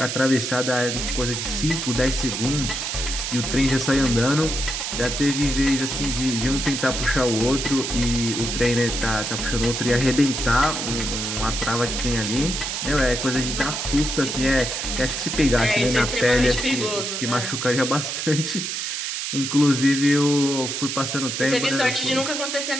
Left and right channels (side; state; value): right; noise; hiss, 3 dB below the sound